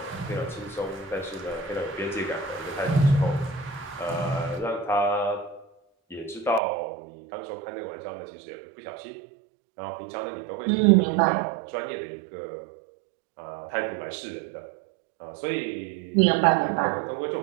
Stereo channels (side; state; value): left; drops out; at 6.6 s